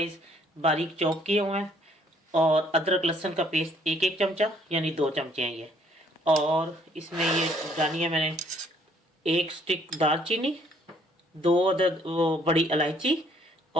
बारीक चॉप किए हुए हैं, और अदरक लहसुन का पेस्ट एक एक चमचा यानी 2 चमचे हैं ये। और इसमें ये डाली है मैंने 1 स्टिक दालचीनी, 2 अदद वो बड़ी इलायची,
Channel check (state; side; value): normal; both; correlation 0.63